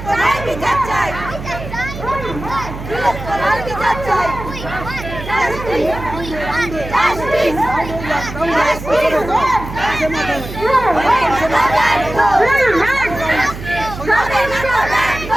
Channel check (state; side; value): noise; right; hum, 10 dB below the sound